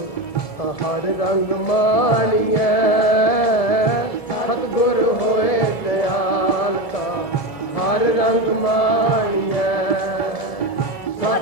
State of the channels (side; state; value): right; late; 1.7 ms